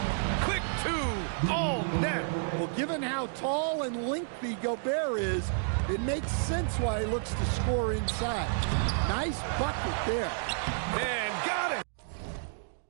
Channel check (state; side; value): silent; left; digital silence